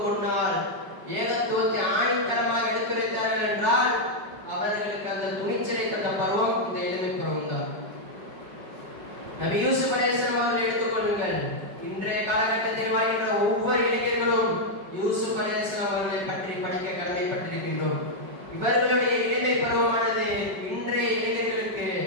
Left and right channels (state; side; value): late; left; 5.1 ms